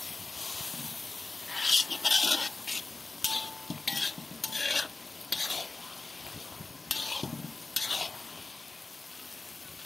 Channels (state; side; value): quieter; right; 3.6 dB